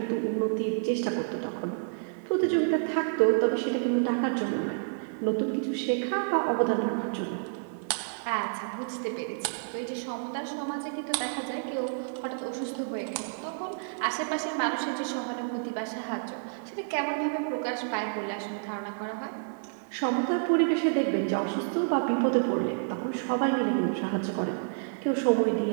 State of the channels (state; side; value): silent; left; digital silence